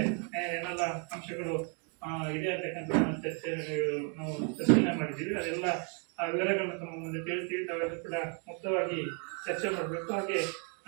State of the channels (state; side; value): quieter; left; 38.6 dB